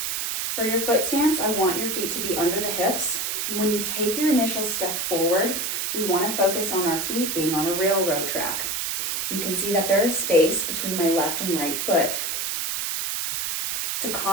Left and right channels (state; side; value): noise; right; hiss, 1 dB below the sound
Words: For your foot stance, I want your feet to be under the hips. And when you take your initial step forward, we want to focus on our feet being on a railroad track. You can see that there is space between my left and right foot. It's a